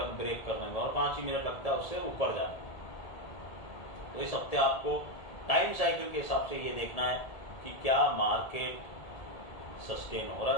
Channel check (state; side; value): late; right; 1.8 ms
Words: ब्रेक करने में, और 5 ही मिनट लगता है उससे ऊपर जाने में। तो इस हफ्ते आपको टाइम साइकिल के हिसाब से ये देखना है कि क्या मार्केट सस्टेन हो रहा